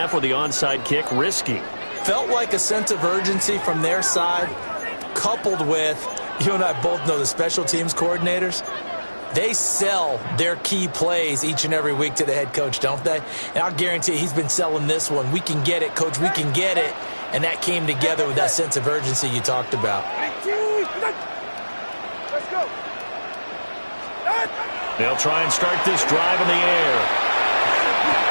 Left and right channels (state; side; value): inverted; both; correlation -1.00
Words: with the onside kick, risky. Felt like a sense of urgency from their side, coupled with, you and I both know the special teams coordinators. They sell their key plays each and every week to the head coach, don't they? And I'll guarantee he's been selling this one. We can get it, coach, we can get it. And that came together with that sense of urgency you talked about. Let's go. They'll try and start this drive in the air.